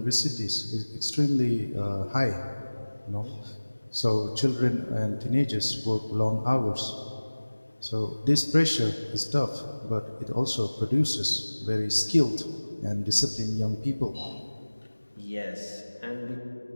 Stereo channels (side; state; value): both; inverted; correlation -1.00